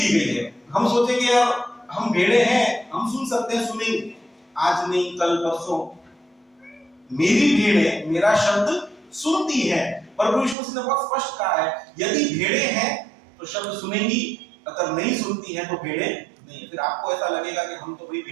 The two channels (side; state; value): left; drops out; at 10.6 s